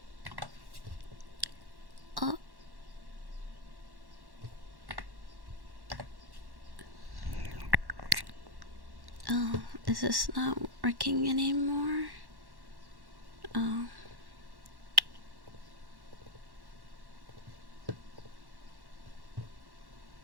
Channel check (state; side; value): late; left; 1.1 ms